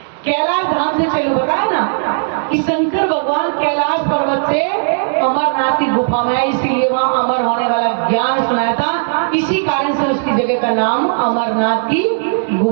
कैलाश धाम से चलो, बताया ना कि शंकर भगवान कैलाश पर्वत से अमरनाथ की गुफा में, इसीलिए वहां अमर होने वाला ज्ञान सुनाया था। इसी कारण से उसकी जगह का नाम अमरनाथ की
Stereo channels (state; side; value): silent; left; digital silence